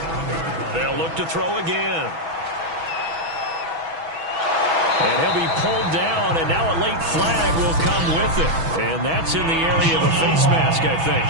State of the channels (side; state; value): left; late; 6.1 ms